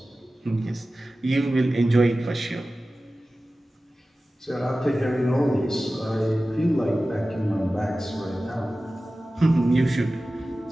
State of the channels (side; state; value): both; normal; correlation 0.96